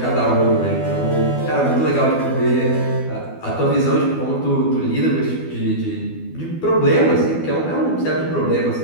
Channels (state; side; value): late; right; 12 ms